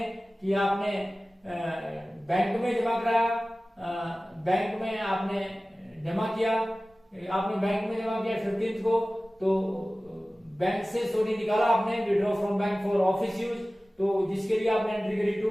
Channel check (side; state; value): both; normal; correlation 0.97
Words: कि आपने बैंक में जमा कराया, बैंक में आपने जमा किया, आपने बैंक में जमा किया 15 को, तो बैंक से निकाला आपने withdraw from bank for office use, तो जिसके लिए आपने एंट्री करी टू